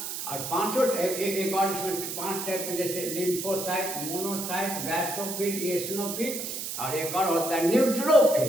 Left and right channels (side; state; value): right; noise; hiss, 5 dB below the sound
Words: और पांचों एक और इसमें 5 टाइप में, जैसे लिम्फोसाइट, मोनोसाइट, बैसोफिल, इओसिनोफिल, और एक और होता है